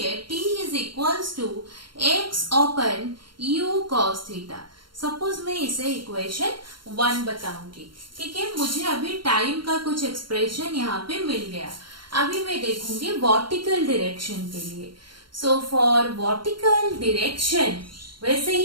t is equals to x open u cos theta. Suppose मैं इसे इक्वेशन 1 बताऊंगी। ठीक है, मुझे अभी टाइम का कुछ एक्सप्रेशन यहाँ पे मिल गया। अभी मैं देखूंगी वर्टिकल डायरेक्शन के लिए। सो फॉर वर्टिकल डायरेक्शन वैसे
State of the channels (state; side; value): late; left; 0.73 ms